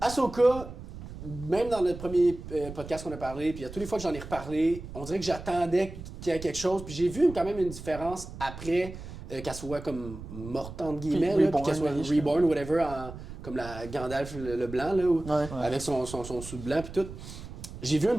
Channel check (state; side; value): noise; right; rumble, 12 dB below the sound